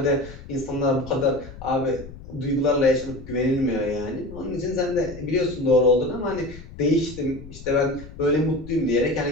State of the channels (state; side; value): noise; left; rumble, 15 dB below the sound